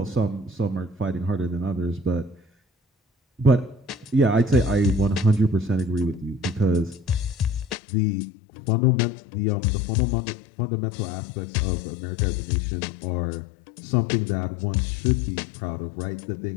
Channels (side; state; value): right; drops out; at 7.8 s